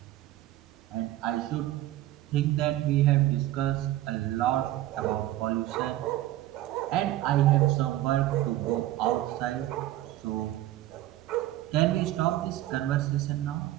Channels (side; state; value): left; quieter; 15.0 dB